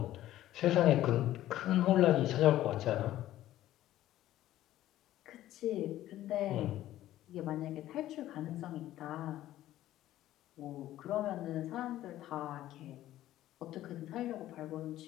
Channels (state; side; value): quieter; right; 13.9 dB